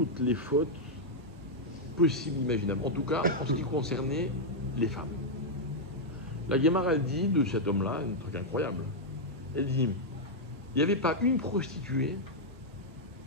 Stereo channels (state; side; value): normal; both; correlation -0.04